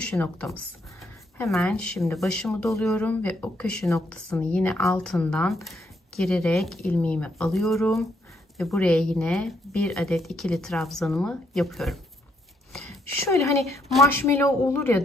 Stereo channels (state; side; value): normal; both; correlation 0.74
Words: noktamız. Hemen şimdi başımı doluyorum ve o köşe noktasını yine altından girerek ilmeğimi alıyorum ve buraya yine bir adet ikili trabzanımı yapıyorum. Şöyle hani marshmallow olur